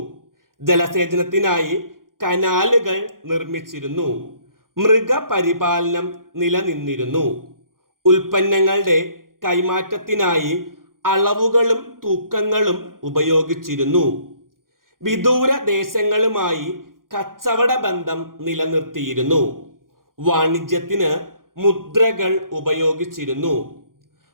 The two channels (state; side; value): late; left; 0.91 ms